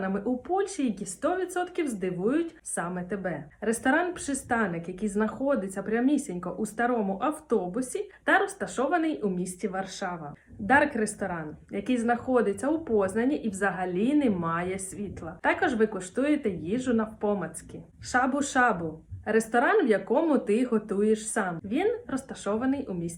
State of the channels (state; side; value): identical; both; correlation 1.00